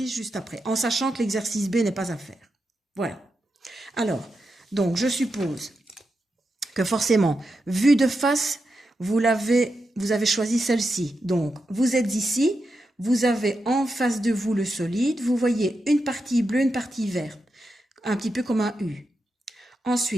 juste après, en sachant que l'exercice B n'est pas à faire. Voilà. Alors, donc, je suppose que forcément, vue de face, vous avez choisi celle-ci. Donc, vous êtes ici, vous avez en face de vous le solide, vous voyez une partie bleue, une partie verte, un petit peu comme un U.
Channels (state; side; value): normal; both; correlation 0.87